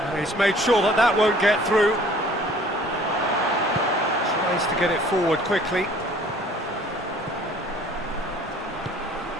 he's made sure that that won't get through. Tries to get it forward quickly.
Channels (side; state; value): both; normal; correlation 0.52